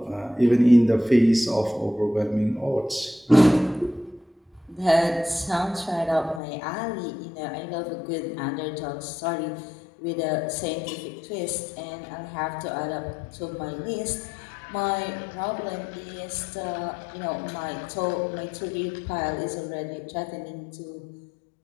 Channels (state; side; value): drops out; right; at 6.4 s